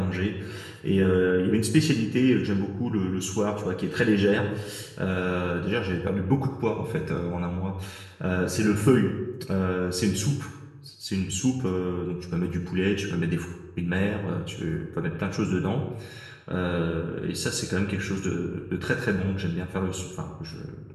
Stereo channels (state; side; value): identical; both; correlation 1.00